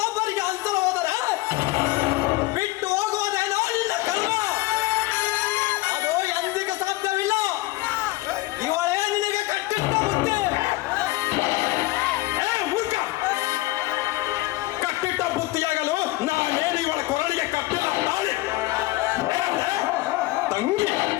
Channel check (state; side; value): quieter; right; 19.2 dB